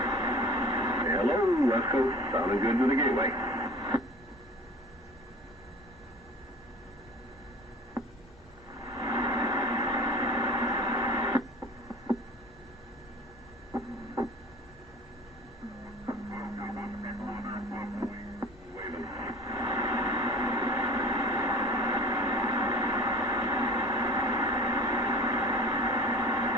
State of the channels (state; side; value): normal; both; correlation 0.42